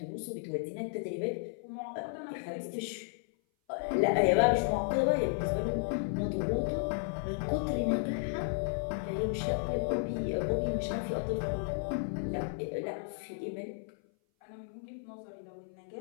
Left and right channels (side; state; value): right; silent; 55 dB below the other